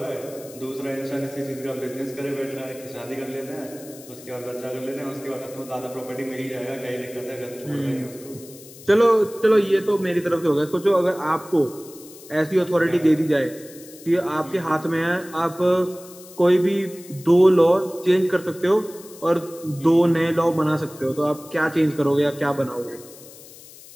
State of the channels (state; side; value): noise; left; hiss, 19 dB below the sound